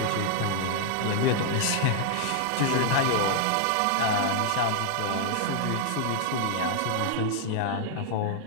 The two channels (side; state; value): both; different; correlation 0.00